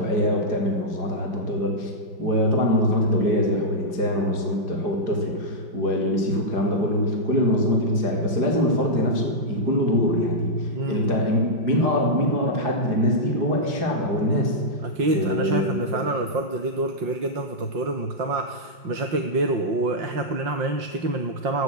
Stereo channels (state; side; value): late; left; 5.6 ms